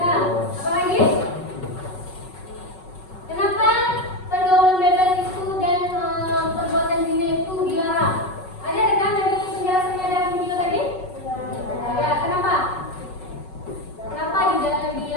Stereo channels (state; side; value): late; right; 5.4 ms